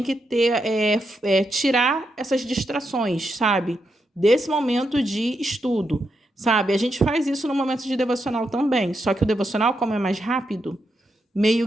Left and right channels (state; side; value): normal; both; correlation 0.83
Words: que ter tirar essas distrações, sabe? Desse momento de estudo, sabe? A gente faz isso no momento de devocional também, só que o devocional, como é mais rápido,